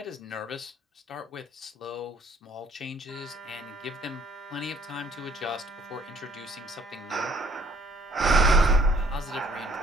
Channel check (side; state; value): both; normal; correlation 0.60